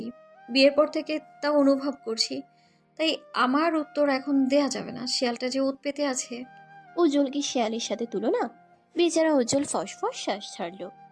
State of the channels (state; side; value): identical; both; correlation 1.00